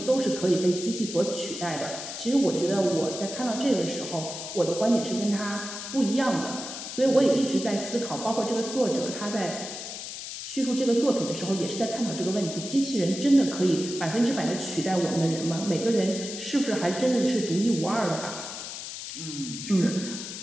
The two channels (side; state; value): left; noise; hiss, 8 dB below the sound